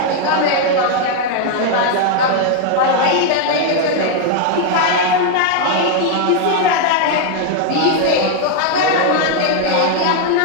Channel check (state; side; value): different; both; correlation 0.00